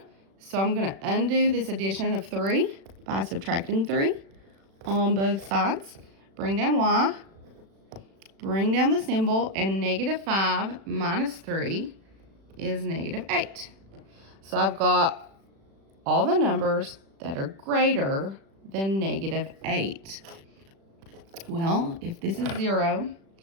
So I'm going to undo this addition of 3 by subtracting 3 on both sides. Bring down y, bring down the symbol, and -5 minus 3 is -8. So I've got all the numbers that are greater than -8. Well, if this is 0,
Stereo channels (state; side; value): late; left; 36 ms